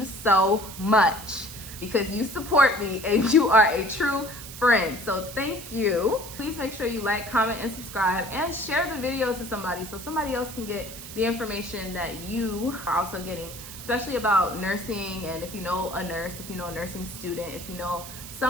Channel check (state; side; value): noise; right; hiss, 12 dB below the sound